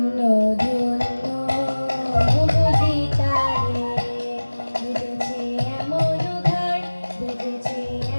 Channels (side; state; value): both; inverted; correlation -1.00